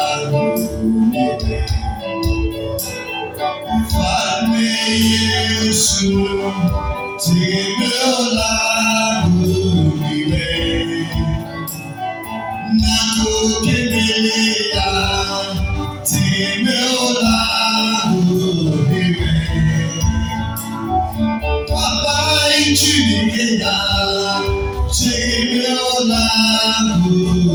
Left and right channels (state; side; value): identical; both; correlation 1.00